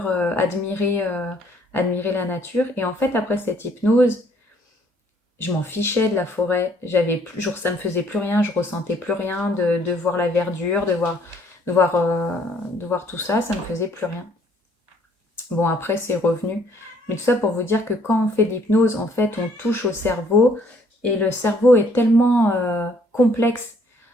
admirer la nature. Et en fait, après cette hypnose, je m'en fichais de la forêt. Ça me faisait plus rien, je ressentais plus rien de voir la verdure, de voir tout ça, ça me faisait plus rien. Bon, après, c'est revenu. Mais tout ça pour vous dire que quand on fait de l'hypnose, en fait, on touche au cerveau. Et le cerveau est tellement complexe.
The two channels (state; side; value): normal; both; correlation 0.63